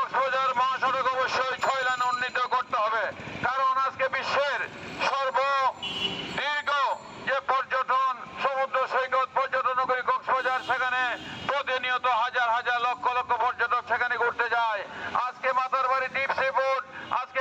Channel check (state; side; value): identical; both; correlation 1.00